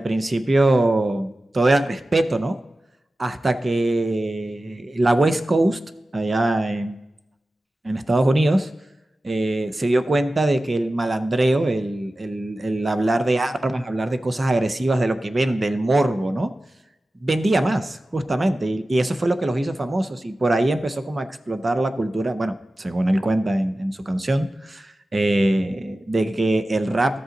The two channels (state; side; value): normal; both; correlation 0.95